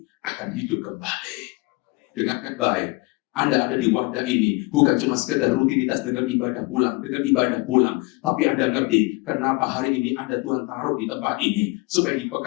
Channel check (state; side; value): quieter; right; 26.2 dB